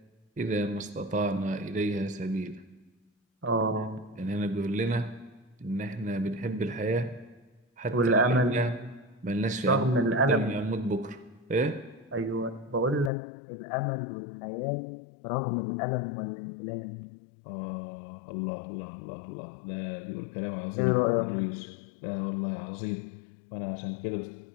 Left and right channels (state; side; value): drops out; right; at 13.1 s